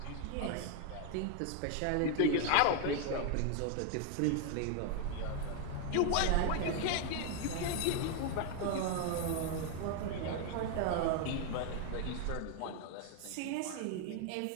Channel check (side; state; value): both; different; correlation 0.01